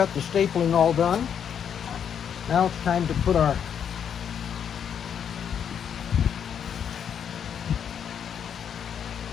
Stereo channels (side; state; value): right; quieter; 8.2 dB